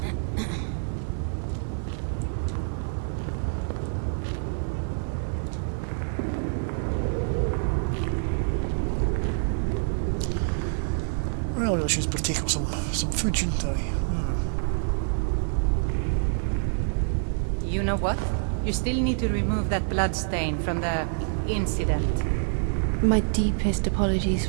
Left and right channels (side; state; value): left; silent; 60 dB below the other